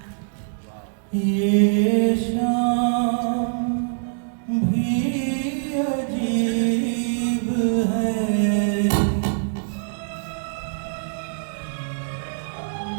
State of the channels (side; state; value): left; silent; digital silence